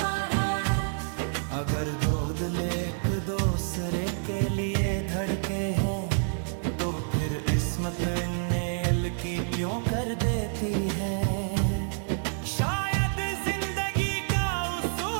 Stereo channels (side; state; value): left; silent; 59 dB below the other